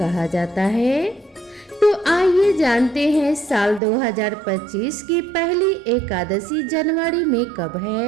जाता है। तो आइए जानते हैं साल 2025 की पहली एकादशी जनवरी में कब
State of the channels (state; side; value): drops out; left; at 3.8 s